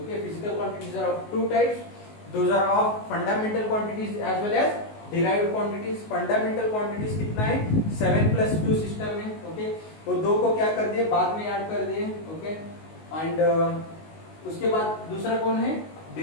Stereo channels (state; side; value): late; right; 19 ms